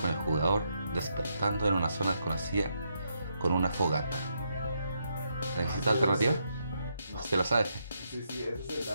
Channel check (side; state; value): both; inverted; correlation -0.79